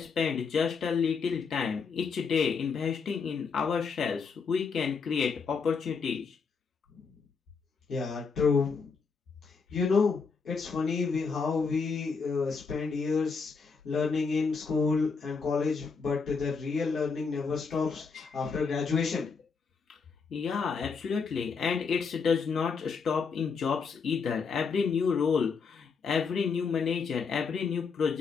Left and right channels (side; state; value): right; quieter; 5.3 dB